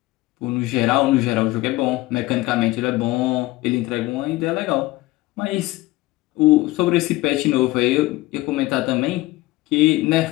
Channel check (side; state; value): right; quieter; 19.1 dB